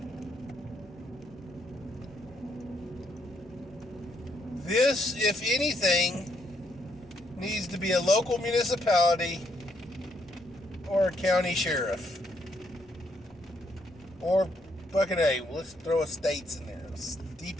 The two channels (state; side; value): normal; both; correlation 0.74